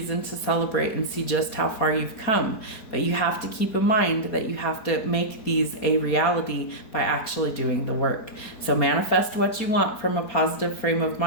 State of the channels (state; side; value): late; right; 4.6 ms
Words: to celebrate and see just how far you've come. But you have to keep in mind that you have to make these a reality by actually doing the work. So manifest what you want from a positive frame of